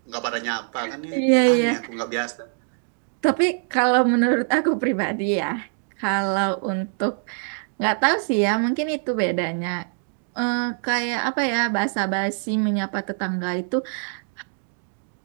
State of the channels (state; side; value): silent; left; digital silence